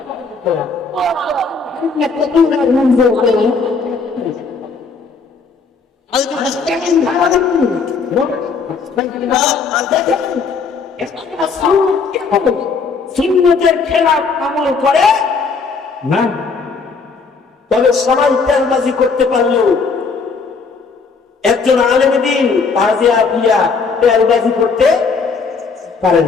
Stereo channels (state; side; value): quieter; right; 4.9 dB